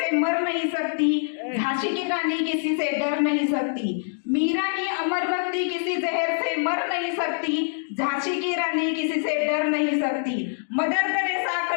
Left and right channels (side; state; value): right; silent; digital silence